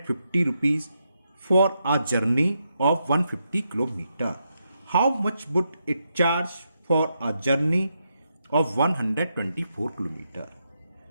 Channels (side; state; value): both; inverted; correlation -0.82